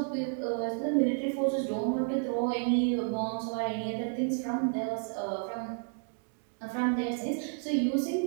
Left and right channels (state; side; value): silent; left; 57 dB below the other